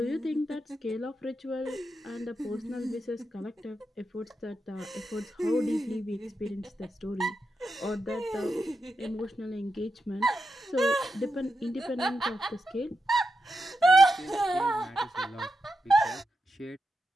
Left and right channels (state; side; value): normal; both; correlation 0.87